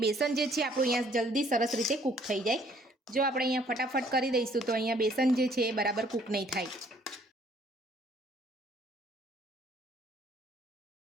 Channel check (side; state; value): both; normal; correlation 0.62